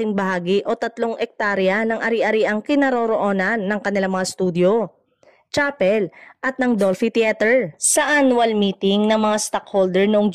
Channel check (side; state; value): both; identical; correlation 1.00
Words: bahagi o 3 ektarya ng ari-ariang kinaroroonan ng kanilang mga studio, chapel at ng Dolphy Theater. Sa annual meeting ng mga stockholder noong